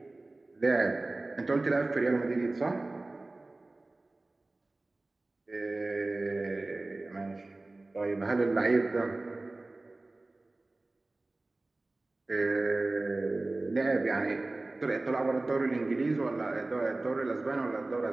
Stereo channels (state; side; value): quieter; left; 3.0 dB